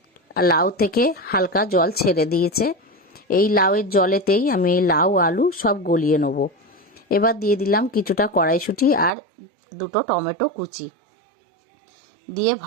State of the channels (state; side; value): drops out; left; at 9.1 s